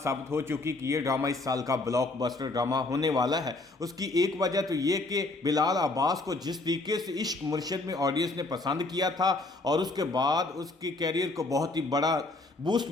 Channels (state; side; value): quieter; right; 3.0 dB